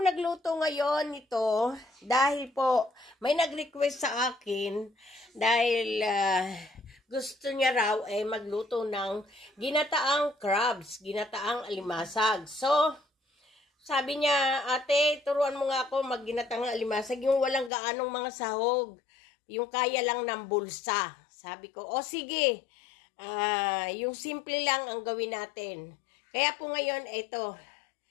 nagluto ngayon nito dahil po may nag-request sa akin dahil gusto niya raw magluto ng ginataang crabs, ginataang alimasag. So, sabi niya, ate, turuan mo nga ako magginatang alimasag, yung walang gaanong mga sahog, yung kaya lang ng bulsa. Sabi ko, o sige, yung simple lang ang gawin natin. Kaya po ngayon, ito,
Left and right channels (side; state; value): right; drops out; at 17.7 s